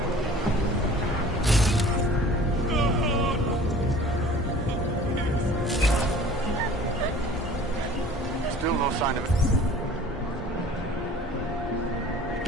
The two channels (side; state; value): both; normal; correlation 0.47